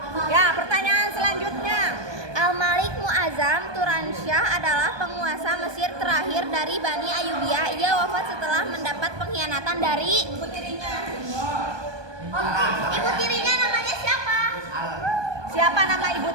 Ya, pertanyaan selanjutnya. Turansyah adalah penguasa Mesir terakhir dari Bani Ayyubiyah. Ia wafat setelah mendapat pengkhianatan dari ibu tirinya namanya siapa? Siapa nama ibu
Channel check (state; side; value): late; left; 1.2 ms